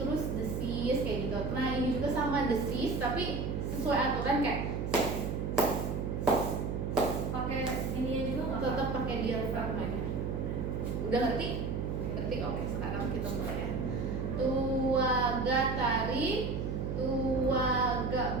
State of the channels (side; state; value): right; noise; hum, 2 dB below the sound